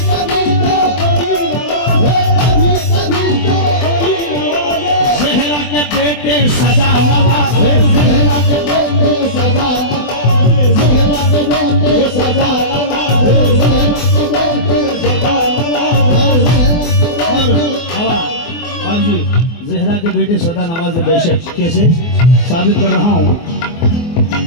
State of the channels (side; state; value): right; late; 24 ms